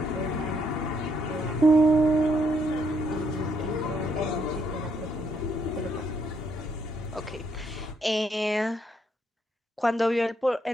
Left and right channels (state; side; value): normal; both; correlation 0.73